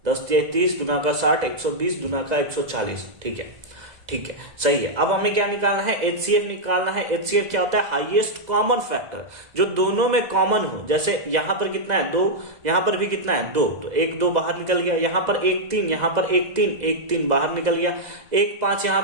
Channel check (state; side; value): late; left; 2.0 ms